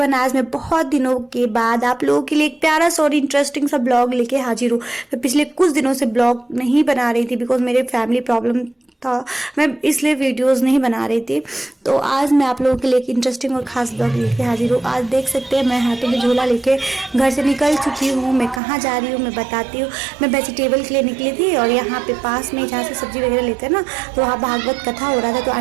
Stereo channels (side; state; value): left; drops out; at 18.6 s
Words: आज मैं बहुत दिनों के बाद आप लोगों के लिए एक प्यारा सा और इंटरेस्टिंग सा ब्लॉग लेके हाजिर हूँ। मैं पिछले कुछ दिनों से ब्लॉग नहीं बना रही थी बिकॉज मेरे फैमिली प्रॉब्लम था, मैं इसलिए वीडियोस नहीं बना रही थी। तो आज मैं आप लोगों के लिए एक इंटरेस्टिंग और ख़ास ब्लॉग लेके हाजिर हूँ। आज देख सकते हैं मैं हाथों में झोला लेके घर से निकल चुकी हूँ। मैं कहाँ जा रही हूँ मैं बताती हूँ। मैं वेजिटेबल के लिए निकली थी और यहाँ पे पास में जहाँ से सब्जी वगैरह लेते हैं ना, तो वहाँ भागवत कथा हो रहा था। तो